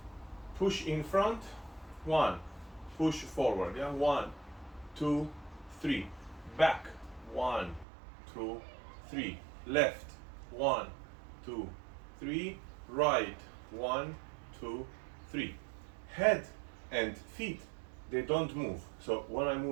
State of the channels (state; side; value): drops out; left; at 7.9 s